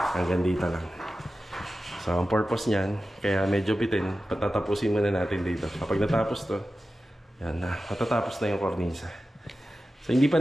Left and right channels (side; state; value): both; normal; correlation 0.94